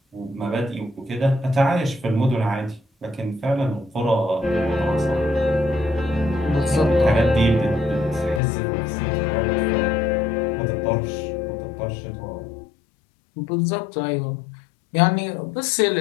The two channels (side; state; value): right; drops out; at 8.4 s